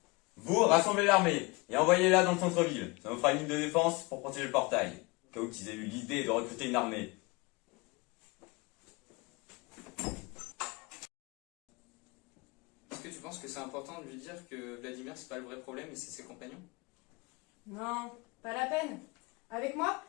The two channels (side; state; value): right; quieter; 25.7 dB